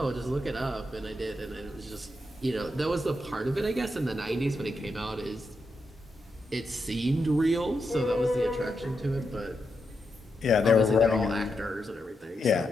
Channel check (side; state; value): both; normal; correlation 0.85